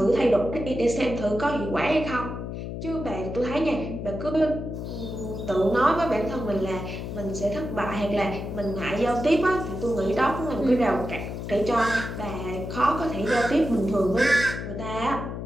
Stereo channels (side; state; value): left; noise; hum, 6 dB below the sound